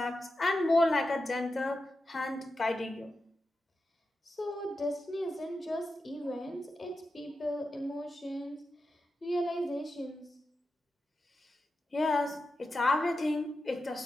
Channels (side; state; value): both; normal; correlation 0.90